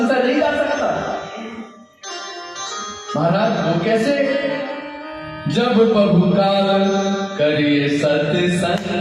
नहीं जा सकता। महाराज वो कैसे? जब बहुकाल करिए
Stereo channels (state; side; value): identical; both; correlation 1.00